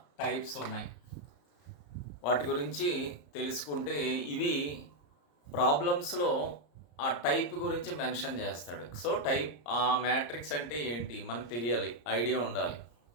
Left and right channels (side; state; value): right; late; 34 ms